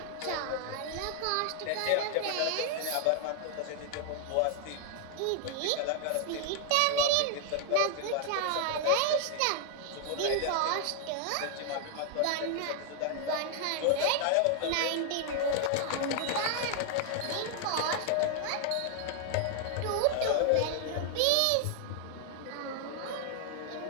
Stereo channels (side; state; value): both; different; correlation 0.00